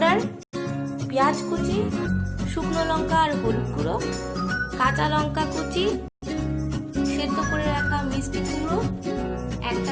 পেঁয়াজ কুচি, শুকনো লঙ্কা আর হলুদ গুঁড়ো, কাঁচা লঙ্কা কুচি, সেদ্ধ করে রাখা মিষ্টি কুমড়ো,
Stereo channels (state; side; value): identical; both; correlation 1.00